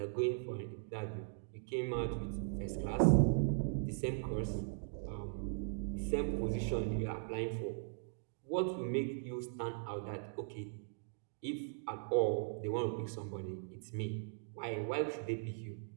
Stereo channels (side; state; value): left; silent; digital silence